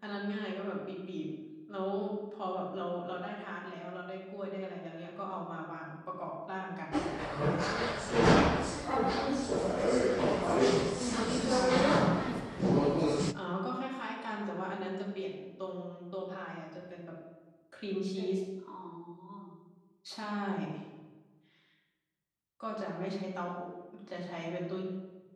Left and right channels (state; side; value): identical; both; correlation 1.00